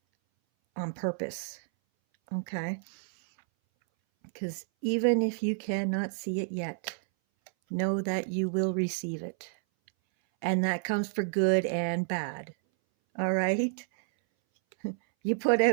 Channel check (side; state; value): left; silent; 58 dB below the other